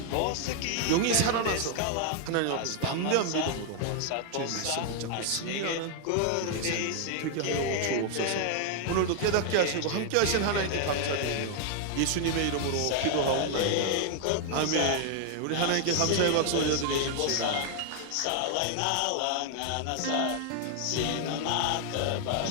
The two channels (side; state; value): both; different; correlation 0.00